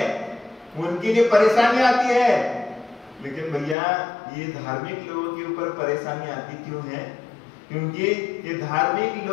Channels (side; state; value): right; drops out; at 3.8 s